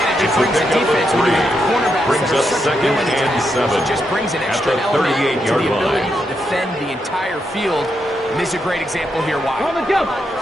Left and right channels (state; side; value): normal; both; correlation 0.82